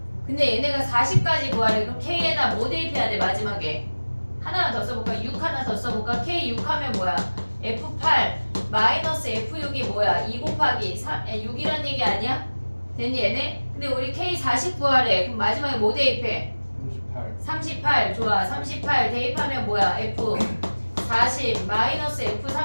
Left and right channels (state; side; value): inverted; both; correlation -1.00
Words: 근데 얘네가 40까지 구하래. 그럼 K에다 뭐 대입해야 돼 마지막에? 하나만 더 써볼까? 6 하나 더 써볼까? K 6 하면 뭐야? F8 마이너스 F6이 뭐야? 2 곱하기 6이란 얘기 아니야? 됐니 얘네? 근데 우리 K 40 구하래. 그럼 마지막에 뭐 대입해? 38. 38 좋아. 38 대입하면 뭐야? F 40 마이너스 F